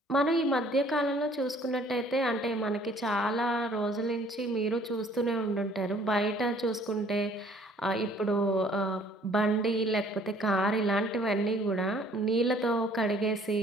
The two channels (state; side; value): normal; both; correlation 0.58